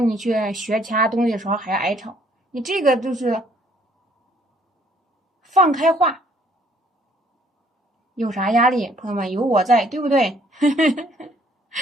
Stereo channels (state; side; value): normal; both; correlation 0.62